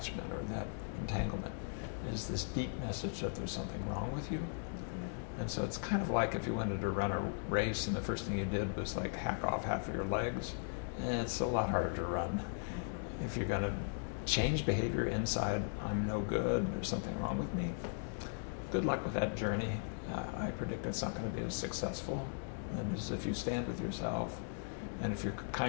or that entanglement is this deep message that there's something wrong with you. And so it's kind of like if you wanted to run a race and the first thing you did was like hack off half of your legs, it's a lot harder to run. If you're going to change behavior inside, I'm no good, there's something wrong with me, good luck with that journey. I predict it's not going to be as successful as if you stand with yourself and if you're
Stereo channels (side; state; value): right; silent; digital silence